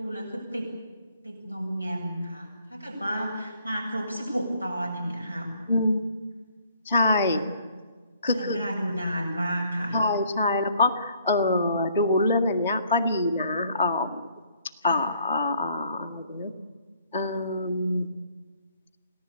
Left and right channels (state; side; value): inverted; both; correlation -0.64